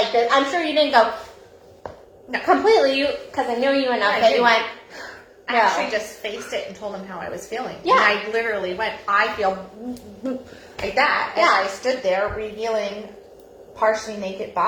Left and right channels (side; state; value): both; identical; correlation 1.00